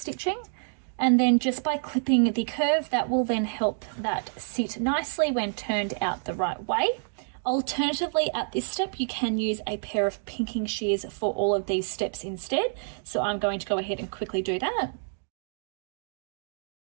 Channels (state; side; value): silent; left; digital silence